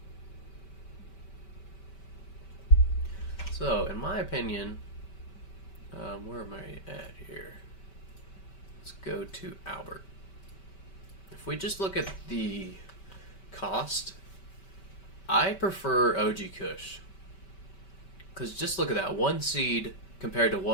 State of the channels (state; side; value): late; right; 5.2 ms